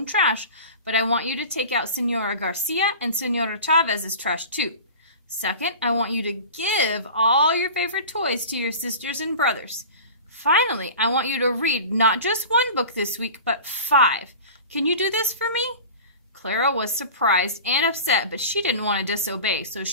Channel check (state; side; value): inverted; both; correlation -0.35